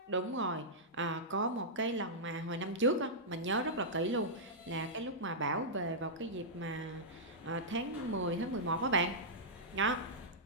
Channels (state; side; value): normal; both; correlation -0.12